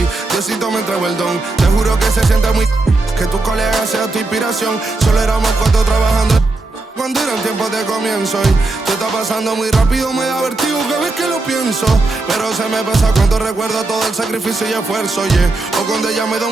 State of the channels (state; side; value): quieter; left; 3.2 dB